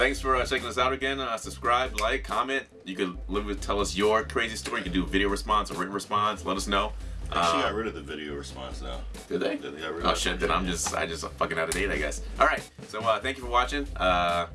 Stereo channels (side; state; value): both; identical; correlation 1.00